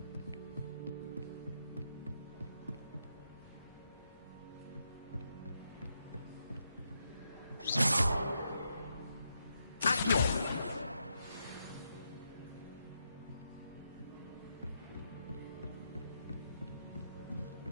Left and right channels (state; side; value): inverted; both; correlation -0.81